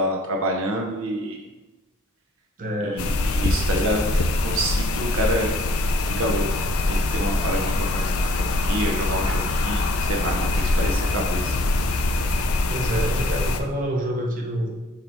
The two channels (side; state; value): both; normal; correlation 0.59